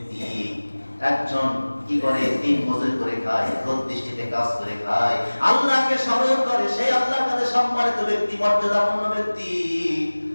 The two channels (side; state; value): both; inverted; correlation -1.00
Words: একজন কি করে, দিন মজুরি করে খায়, রোদ বৃষ্টিতে কাজ করে খায়, আল্লাহকে স্মরণ করে, সেই আল্লাহর কাছে সম্মানিত ব্যক্তি, মর্যাদাপূর্ণ ব্যক্তি।